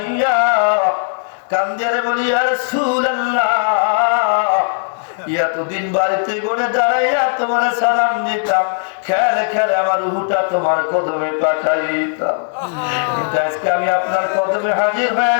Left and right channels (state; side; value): silent; right; 68 dB below the other